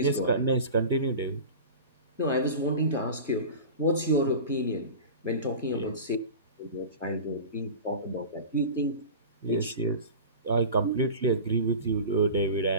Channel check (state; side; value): inverted; both; correlation -0.33